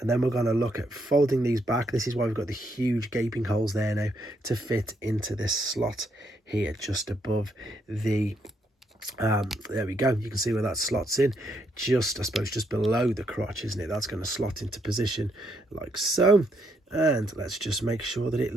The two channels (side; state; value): both; normal; correlation 0.75